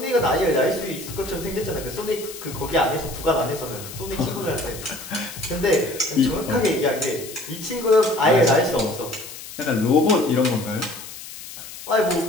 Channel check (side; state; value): left; noise; hiss, 13 dB below the sound